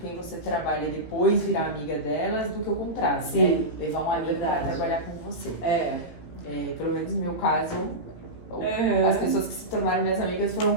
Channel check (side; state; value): right; late; 17 ms